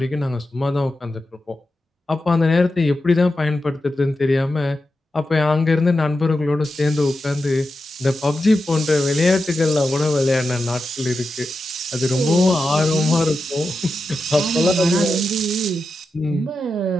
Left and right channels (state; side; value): normal; both; correlation 0.90